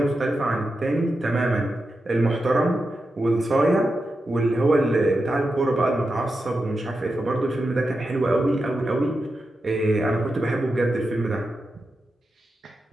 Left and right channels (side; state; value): both; normal; correlation 0.89